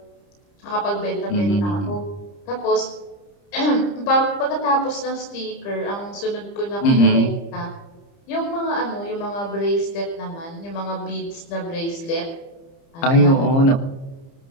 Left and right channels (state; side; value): late; right; 30 ms